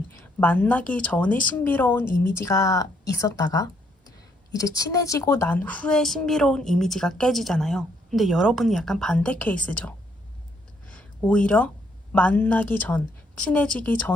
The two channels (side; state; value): both; normal; correlation 0.71